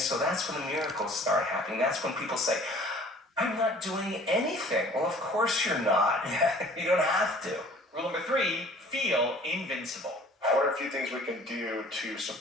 that's when the miracles start happening. That's when people say, I'm not doing anything. Well, of course you're not. You don't have to. Rule number 3, feel invincible. What are a few things we can do to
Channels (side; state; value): both; normal; correlation 0.50